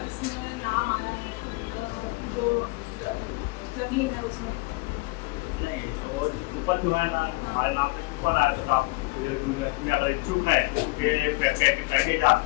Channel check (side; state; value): right; quieter; 24.5 dB